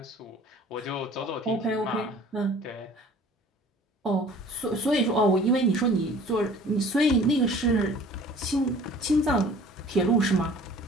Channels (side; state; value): both; normal; correlation 0.49